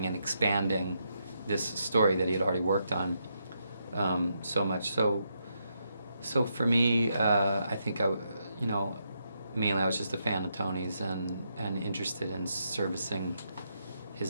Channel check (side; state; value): both; inverted; correlation -0.80